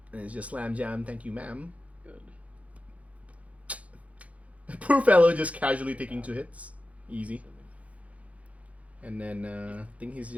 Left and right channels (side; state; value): left; late; 0.066 ms